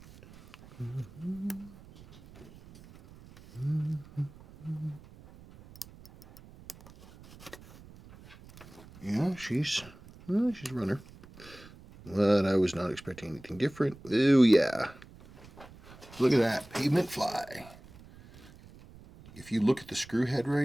Yeah, she's a runner. But I was not expecting anything different. Oh, yeah. Look at that, pavement fly. If you look at the screw head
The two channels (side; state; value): right; noise; rumble, 21 dB below the sound